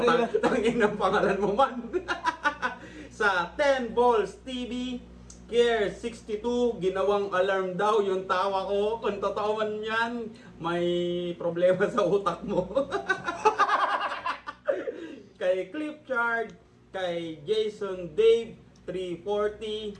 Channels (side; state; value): both; identical; correlation 1.00